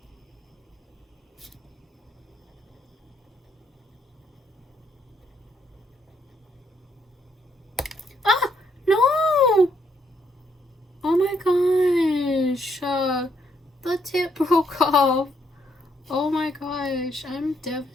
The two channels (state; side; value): normal; both; correlation 0.73